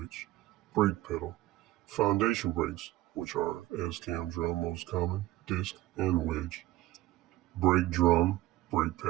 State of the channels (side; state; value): left; quieter; 16.5 dB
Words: brake pedal, foundation brakes, which are S-cam drum most common, disc, and wedge, brake drum, brake